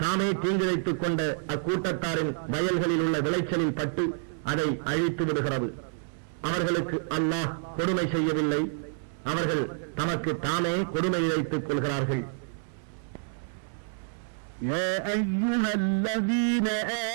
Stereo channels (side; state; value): left; silent; 59 dB below the other